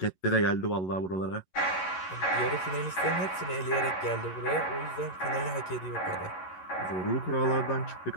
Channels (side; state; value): right; late; 11 ms